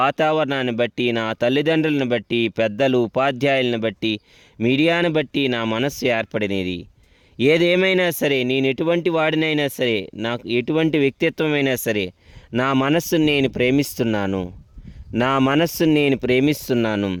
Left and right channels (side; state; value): both; identical; correlation 1.00